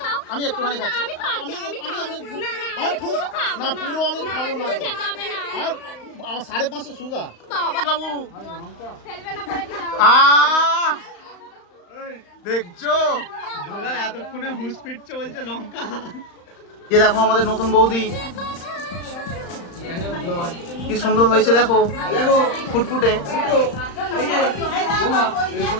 আমি একটুখানি খাচ্ছি। না পুরো আমি খাবো না, আমার 550 সুগার। বাবু দেখছো এতক্ষণে হুঁশ ফিটছে, বলছে লঙ্কা। যে দেখো আমাদের নতুন বৌদি কি সুন্দর হয়েছে, দেখো ফুটফুটে।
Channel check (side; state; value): right; late; 35 ms